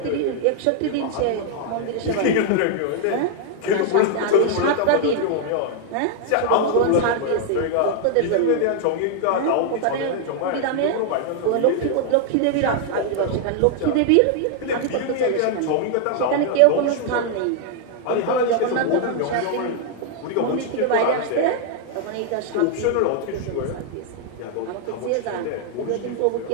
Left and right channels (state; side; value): different; both; correlation 0.00